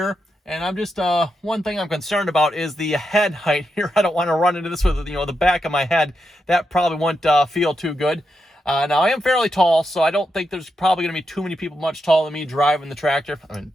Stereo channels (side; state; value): both; normal; correlation 0.85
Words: And I'm just, one thing I'm concerned about is the head height here. I don't want to run into this with, you know, the back of my head. That probably won't feel too good. Now, I am fairly tall, so I don't think there's probably going to be too many people much taller than me driving the tractor. I mean,